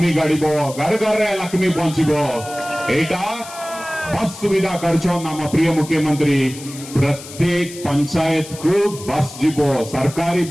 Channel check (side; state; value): left; noise; hiss, 15 dB below the sound